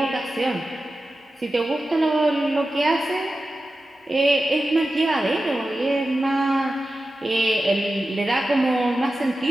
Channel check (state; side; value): normal; both; correlation 0.93